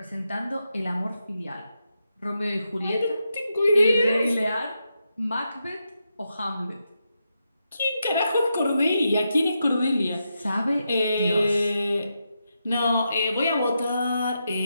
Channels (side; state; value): both; inverted; correlation -0.85